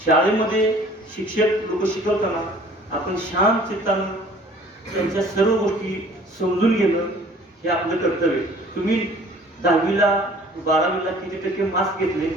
शाळेमध्ये शिक्षक लोक शिकवताना आपण शांत चित्तानं त्यांच्या सर्व गोष्टी समजून घेणं हे आपलं कर्तव्य। तुम्ही 10वीला 12वीला किती टक्के मार्क्स घेतले,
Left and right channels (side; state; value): both; normal; correlation 0.52